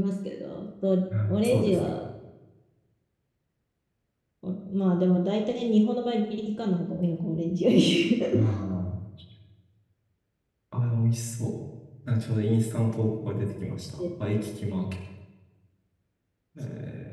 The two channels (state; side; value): identical; both; correlation 1.00